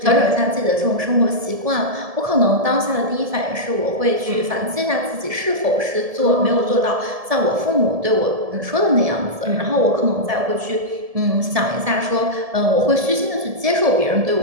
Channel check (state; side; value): late; left; 1.7 ms